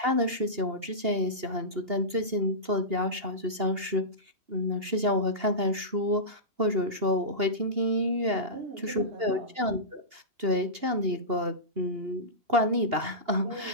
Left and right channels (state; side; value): late; left; 2.8 ms